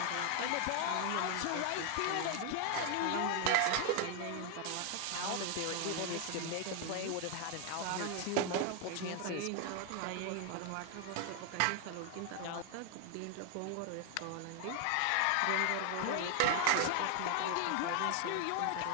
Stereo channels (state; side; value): different; both; correlation 0.01